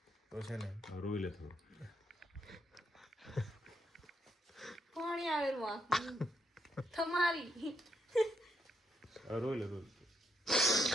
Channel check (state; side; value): normal; both; correlation 0.77